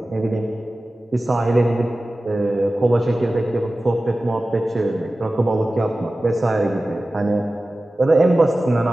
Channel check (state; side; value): normal; both; correlation 0.96